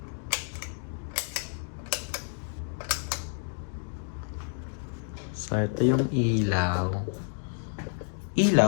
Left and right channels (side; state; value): right; silent; 58 dB below the other